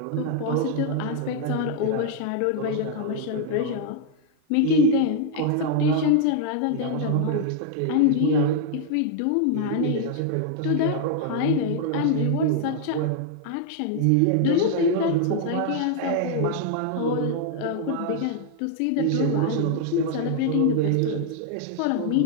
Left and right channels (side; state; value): both; different; correlation 0.00